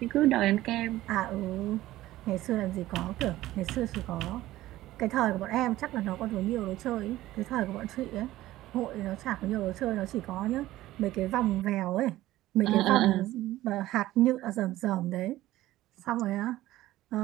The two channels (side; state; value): left; quieter; 15.7 dB